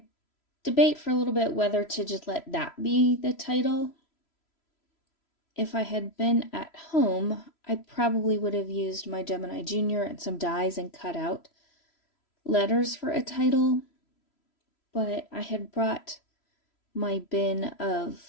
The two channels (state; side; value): late; right; 3.0 ms